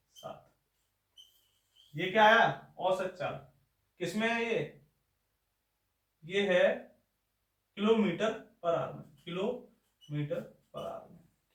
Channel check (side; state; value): both; identical; correlation 1.00